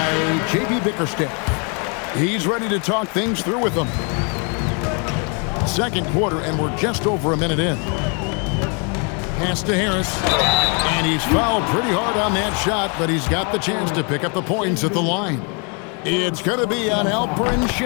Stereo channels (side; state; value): right; quieter; 36.2 dB